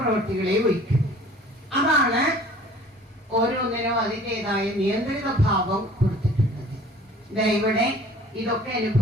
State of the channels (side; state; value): both; normal; correlation 0.49